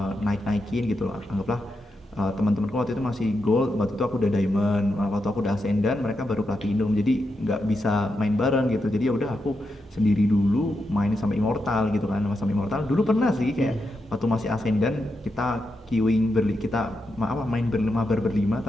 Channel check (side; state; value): both; normal; correlation 0.86